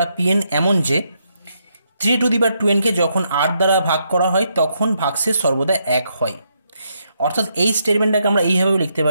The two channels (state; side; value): inverted; both; correlation -0.78